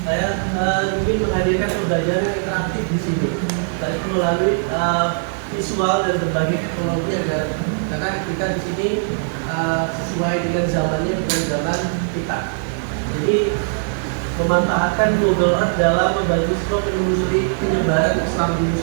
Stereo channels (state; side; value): silent; left; digital silence